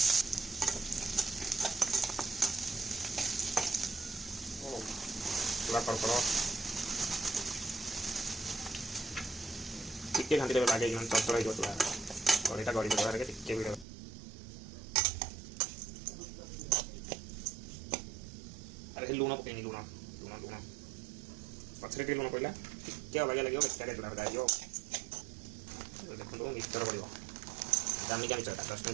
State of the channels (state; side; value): drops out; left; at 13.9 s